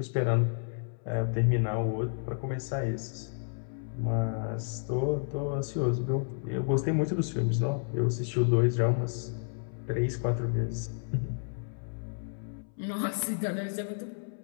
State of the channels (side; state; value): right; silent; 57 dB below the other